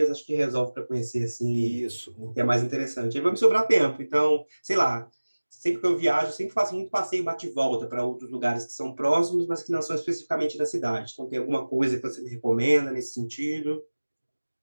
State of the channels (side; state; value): both; inverted; correlation -1.00